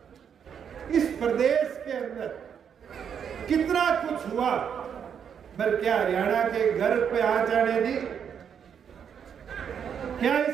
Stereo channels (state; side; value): quieter; left; 7.8 dB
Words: इस प्रदेश के अंदर कितना कुछ हुआ। पर क्या हरियाणा के गर्व पे आ जाने दी? क्या